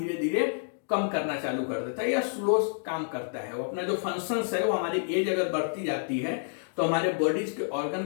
धीरे कम करना चालू कर देता है या स्लो काम करता है। वो अपना जो फंक्शंस है वो हमारी एज अगर बढ़ती जाती है तो हमारे बॉडीज के ऑर्गन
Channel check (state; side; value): silent; right; digital silence